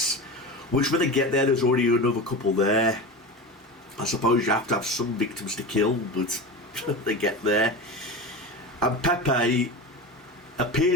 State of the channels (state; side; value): normal; both; correlation 0.26